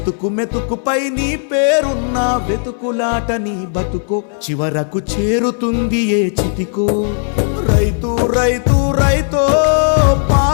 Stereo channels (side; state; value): right; silent; 60 dB below the other